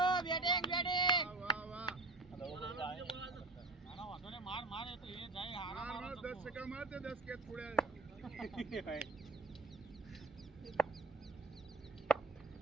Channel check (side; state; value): left; quieter; 3.5 dB